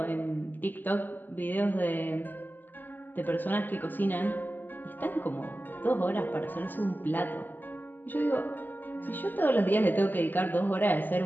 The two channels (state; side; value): late; right; 0.088 ms